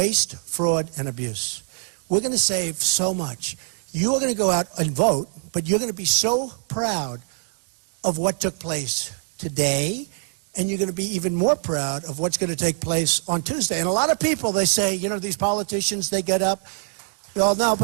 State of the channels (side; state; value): left; silent; digital silence